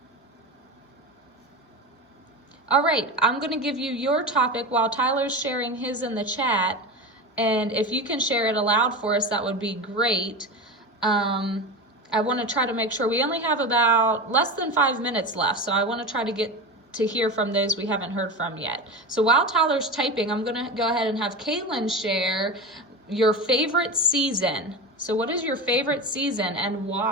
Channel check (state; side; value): normal; both; correlation 0.25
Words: All right, I'm going to give you your topic while Tyler's sharing his in the chat. And if you can share it aloud for us, that would be great. I want to try to make sure we only have about less than 5 minutes left. So I want to try to get to hear from those we haven't heard from yet. So while Tyler's typing, I'm going to go ahead and have Caitlin share your favorite season. So what is your favorite season and